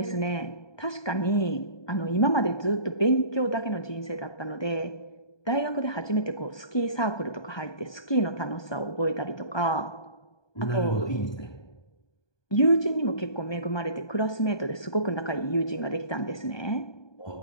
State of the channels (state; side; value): late; right; 1.2 ms